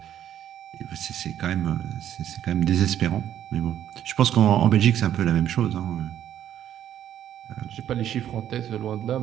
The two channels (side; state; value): left; quieter; 10.9 dB